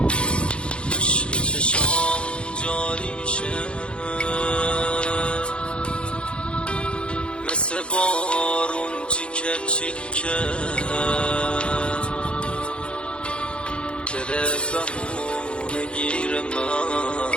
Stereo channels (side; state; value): right; late; 0.057 ms